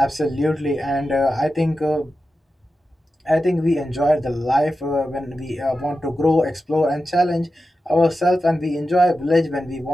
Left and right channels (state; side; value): normal; both; correlation 0.92